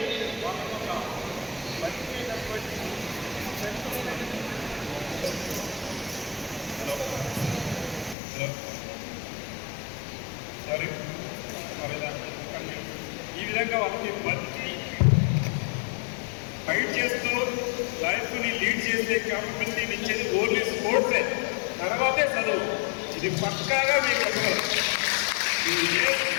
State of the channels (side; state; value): right; drops out; at 8.2 s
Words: ఈ విధంగా వాళ్ళకి బతికి ఫైట్ చేస్తూ లైఫ్ని లీడ్ చేసే క్యాపబిలిటీని ఇచ్చేది ఓన్లీ స్పోర్ట్సే, తర్వాతే చదువు. ఇది పక్కాగా మీకు చెప్పగలరు. ఏ